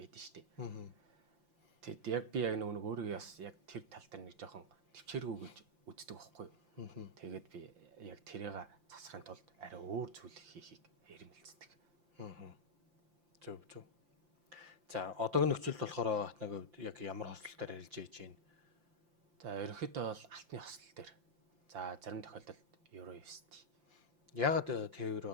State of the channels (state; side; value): late; left; 5.8 ms